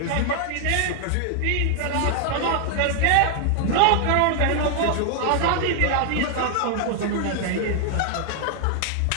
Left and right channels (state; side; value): different; both; correlation 0.00